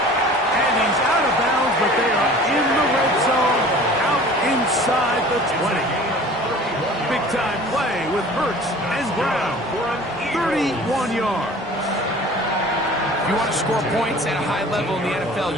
And he's out of bounds, but they are in the red zone, out inside the 20. Big-time play with Hurts and Brown for 31 yards. If you want to score points at a high level in the NFL,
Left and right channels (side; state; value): both; normal; correlation 0.45